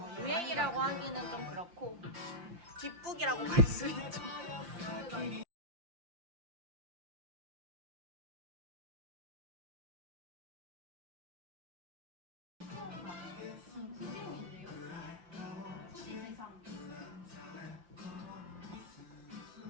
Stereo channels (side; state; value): left; late; 5.8 ms